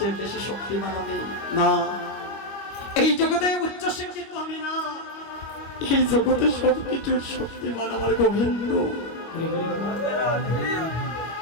বেশি শক্তিমান আমি, না। এই জগতে উচ্চ শিক্ষিত আমি, না। এই জগতে সবকিছুর শক্তিমান আমার গোবিন্দ।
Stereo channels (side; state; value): right; late; 25 ms